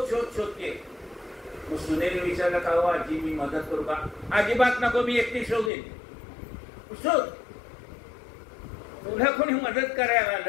शोध शोधते. मग सुनेने विचारलं का हो आजी मी मदत करू का? अजिबात नको, मी एकटी शोधेन. शोध, तुला कोणी मदत करायला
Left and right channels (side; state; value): right; drops out; at 5.7 s